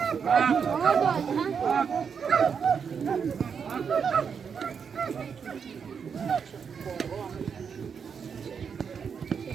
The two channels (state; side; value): quieter; left; 6.6 dB